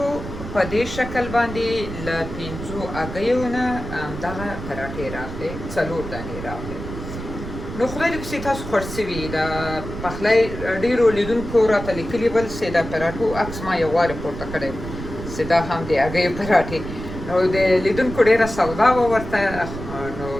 په دې شکل باندې له 5 هګیو نه همدغه پراټې راغلې 4 دانې راغلې نو خدای دې پسې تاسو خوښ شوي د پخلی ډېرو لیدونکو راته لیکلي ول چې د پراټو عکس ما یو وارې پورته کړی چې دا هم د هګیو پراټې نو د لیدونکو ډېره سودا وه ورته نو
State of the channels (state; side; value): noise; right; rumble, 9 dB below the sound